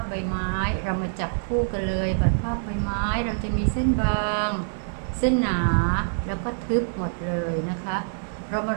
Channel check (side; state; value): left; silent; digital silence